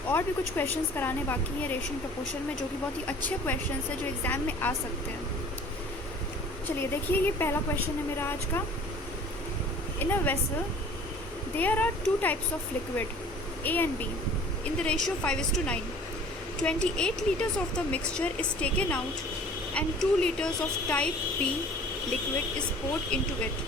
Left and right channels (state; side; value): normal; both; correlation 0.48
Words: और भी कुछ क्वेश्चंस कराने बाकी हैं रेशियो एंड प्रपोर्शन में, जो कि बहुत ही अच्छे क्वेश्चंस हैं जो एग्ज़ाम में आ सकते हैं। चलिए देखिए, ये पहला क्वेश्चन है मेरा आज का। In a vessel there are two types of liquid A and B in the ratio 5:9. 28 liters of the mixture is taken out and 2 liters of type B liquid is poured into it.